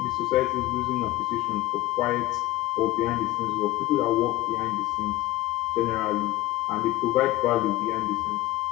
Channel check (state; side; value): quieter; right; 17.1 dB